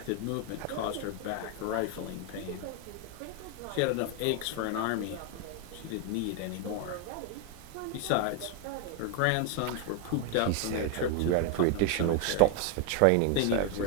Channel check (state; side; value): different; both; correlation 0.01